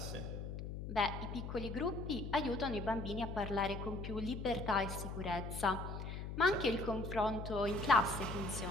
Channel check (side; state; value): left; noise; hum, 6 dB below the sound